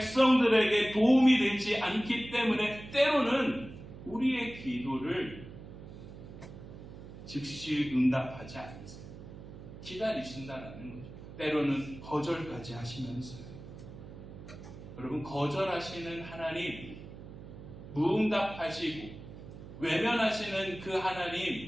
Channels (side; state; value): right; noise; hum, 14 dB below the sound